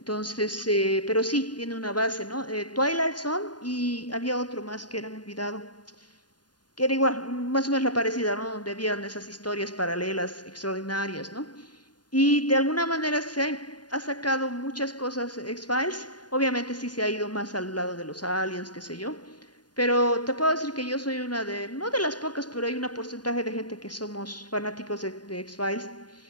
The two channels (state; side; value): late; right; 0.70 ms